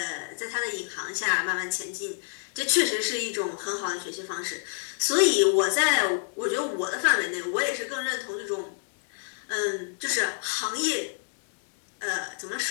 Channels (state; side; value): silent; right; digital silence